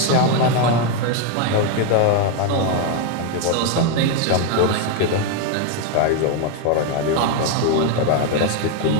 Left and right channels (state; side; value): different; both; correlation 0.01